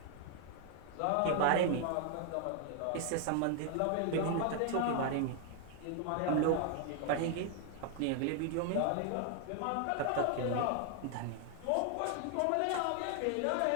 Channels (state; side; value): different; both; correlation 0.00